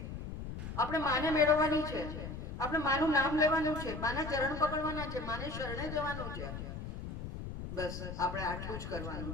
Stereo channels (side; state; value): left; noise; rumble, 8 dB below the sound